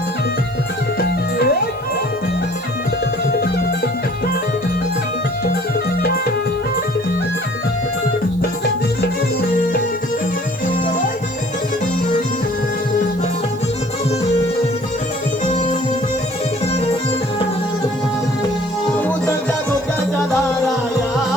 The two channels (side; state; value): right; noise; hiss, 27 dB below the sound